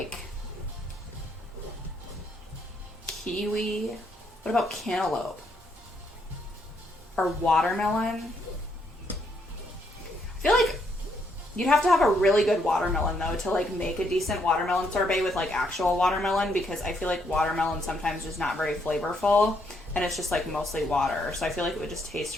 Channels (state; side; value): normal; both; correlation 0.74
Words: kiwi. What about cantaloupe? Or watermelon? I feel like you'd have to have a really good watermelon though to like make a decent watermelon sorbet with like actual watermelon, because I feel like watermelon sometimes is not very flavorful and it's just like mostly water. So I feel like it would just taste